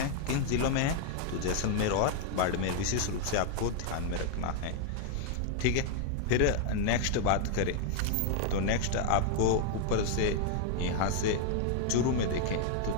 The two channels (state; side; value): different; both; correlation 0.00